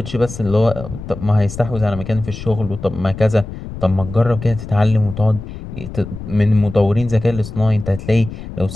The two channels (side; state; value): left; noise; rumble, 11 dB below the sound